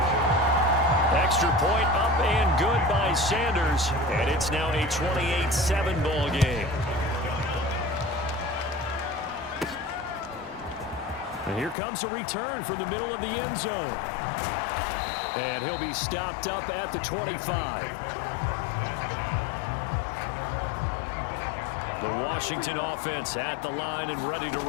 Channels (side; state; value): right; drops out; at 11.8 s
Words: Extra point up and good by Sanders. And it's now a 28-7 ball game. And here comes a return from the middle of the end zone. And he'll be stopped up at the 25. The Washington offense at the line and ready to